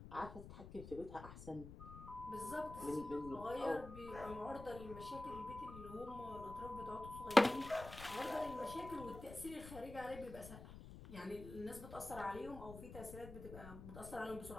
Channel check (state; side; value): noise; left; rumble, 12 dB below the sound